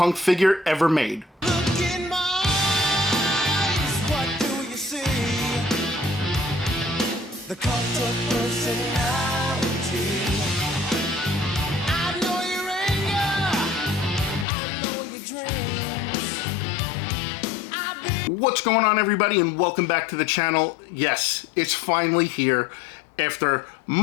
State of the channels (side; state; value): right; drops out; at 14.5 s